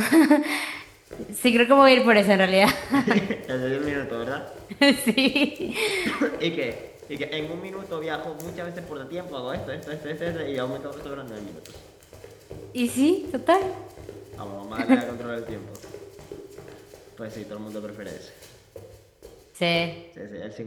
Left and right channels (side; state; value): both; identical; correlation 1.00